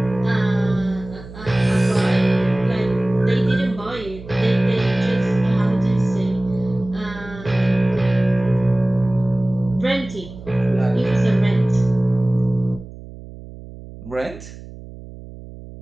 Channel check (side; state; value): right; noise; hum, 16 dB below the sound